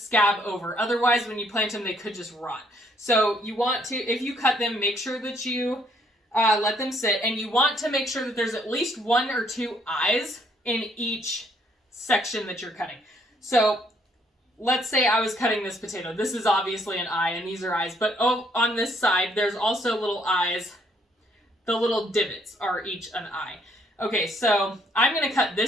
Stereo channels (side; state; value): both; normal; correlation 0.67